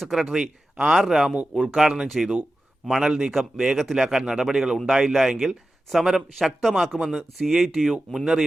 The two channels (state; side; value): normal; both; correlation 0.93